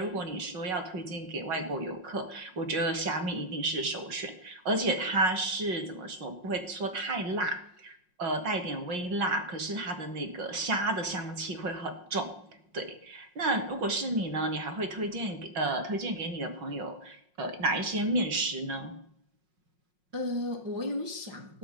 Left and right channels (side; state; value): left; late; 5.5 ms